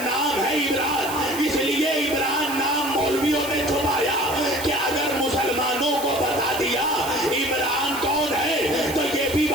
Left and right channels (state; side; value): noise; right; hiss, 10 dB below the sound